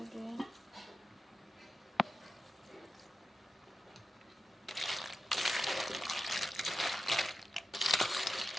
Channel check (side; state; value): both; normal; correlation 0.92